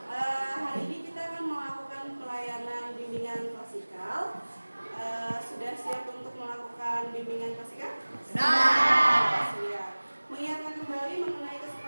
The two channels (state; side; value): inverted; both; correlation -1.00